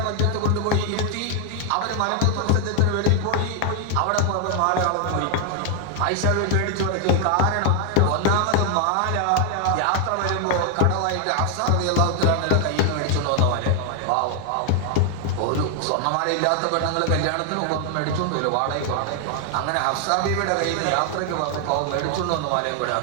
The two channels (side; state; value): both; different; correlation 0.00